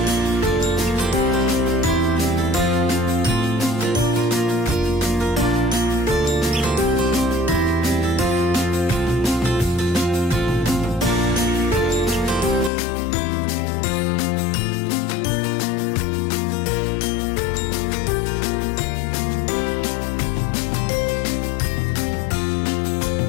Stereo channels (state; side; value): drops out; right; at 12.7 s